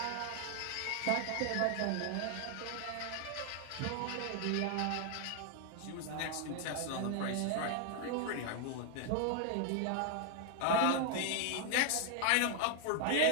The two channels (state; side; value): different; both; correlation 0.00